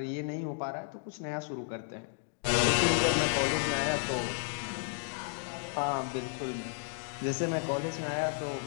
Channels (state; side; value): silent; right; digital silence